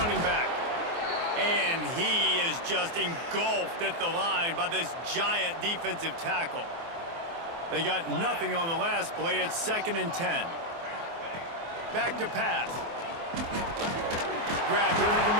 back. And he is just engulfed at the line by this giant defensive tackle. They got nothing on the last play. It's 2nd and 10. Back to pass. Grabbed over the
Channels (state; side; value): late; left; 24 ms